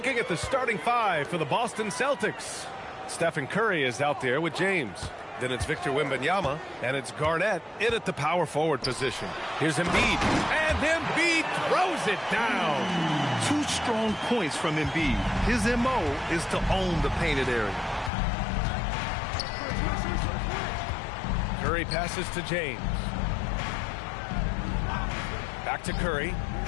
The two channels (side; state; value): right; drops out; at 18.1 s